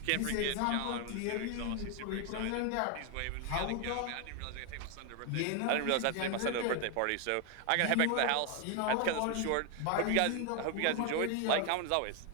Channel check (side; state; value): both; different; correlation 0.01